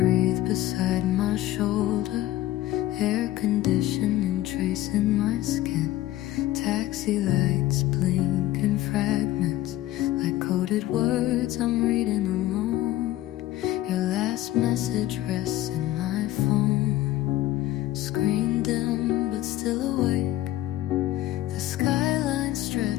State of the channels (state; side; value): quieter; right; 15.0 dB